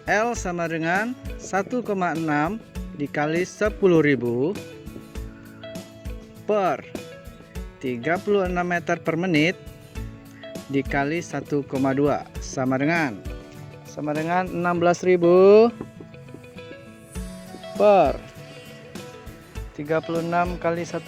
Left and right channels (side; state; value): both; identical; correlation 1.00